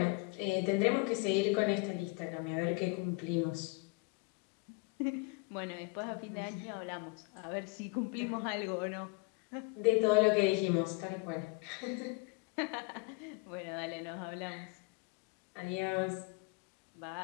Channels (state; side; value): quieter; right; 28.1 dB